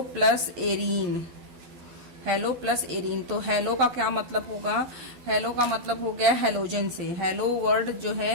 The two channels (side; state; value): left; late; 12 ms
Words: plus arene. Hello plus arene, तो हेलो का क्या मतलब होगा? हेलो का मतलब हो गया हेलोजन से। हेलो वर्ड जो